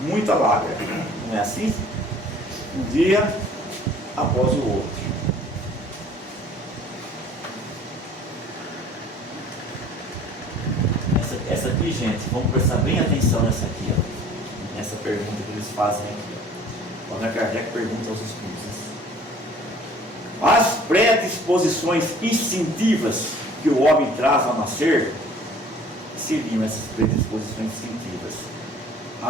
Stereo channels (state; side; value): normal; both; correlation 0.51